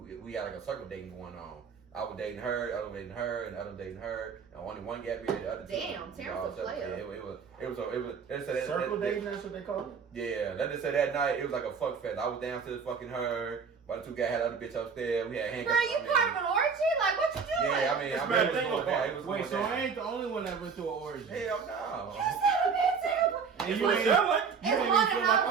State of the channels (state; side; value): quieter; left; 5.8 dB